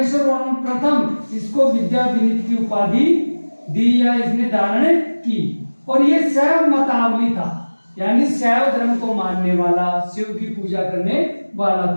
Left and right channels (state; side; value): inverted; both; correlation -1.00